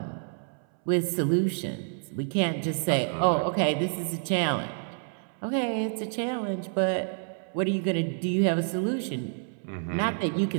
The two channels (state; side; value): silent; left; 59 dB below the other